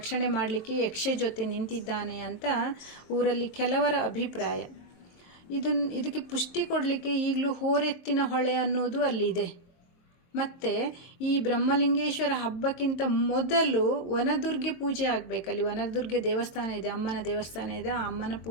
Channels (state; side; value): late; right; 22 ms